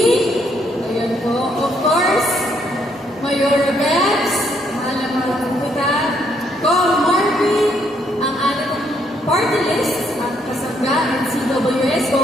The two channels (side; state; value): both; normal; correlation 0.71